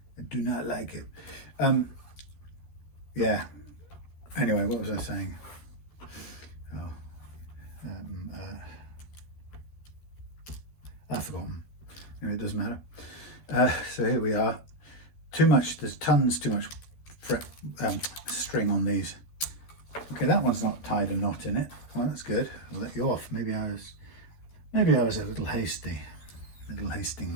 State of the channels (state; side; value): late; right; 13 ms